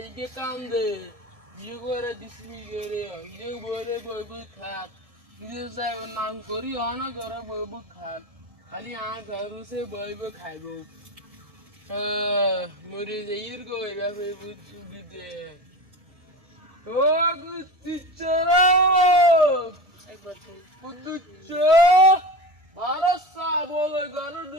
কাম দে বিয়ে করে দিসলি করে ইয়ে বরে বই বই খাত নিজে যাই নাম করি অনা করে বই বই খাত খালি আ ঘর সে বই বই খাইব মরে যাইর গো এরা বই বই সুবিধে ও গুচ্চিচরা একবার বুদ্ধুচ্চ ভারত সা বলে ঘর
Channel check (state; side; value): late; left; 1.7 ms